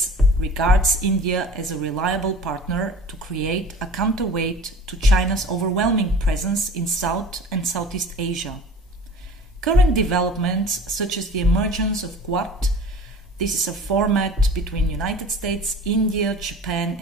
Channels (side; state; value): both; normal; correlation 0.41